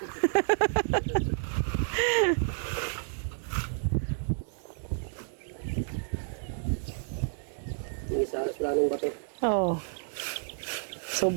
Yung isa, wala nang bato. Oh.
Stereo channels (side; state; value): left; silent; digital silence